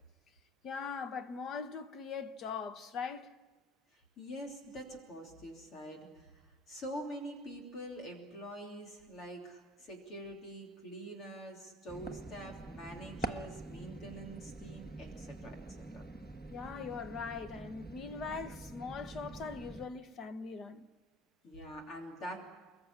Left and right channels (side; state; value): both; normal; correlation 0.47